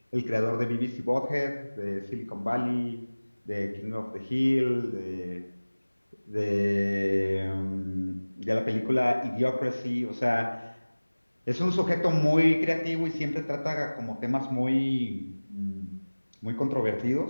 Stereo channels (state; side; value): inverted; both; correlation -1.00